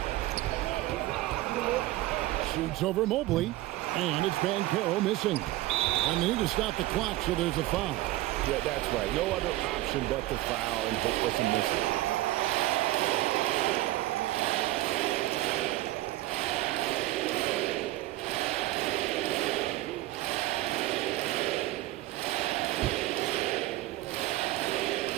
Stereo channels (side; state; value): left; quieter; 17.0 dB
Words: Shoots over Mobley, and it's Banchero missing. And they need to stop the clock, so there's a foul. Yeah, that's right. No other option but to foul and hope for some missing.